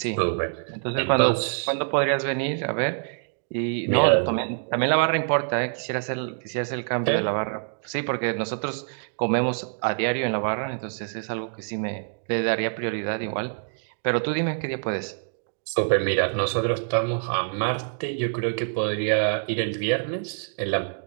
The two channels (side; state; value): left; silent; digital silence